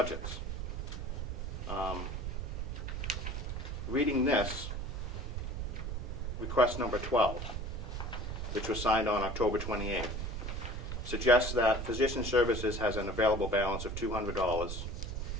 Reading this, request number 12, which was signed on October 28th, suggests that physician services has an available balance of $200,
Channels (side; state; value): right; noise; rumble, 4 dB below the sound